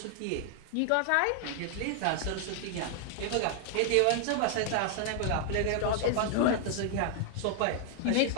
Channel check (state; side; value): different; both; correlation 0.00